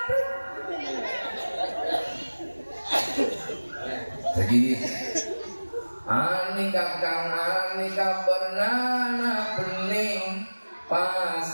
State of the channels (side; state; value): both; inverted; correlation -1.00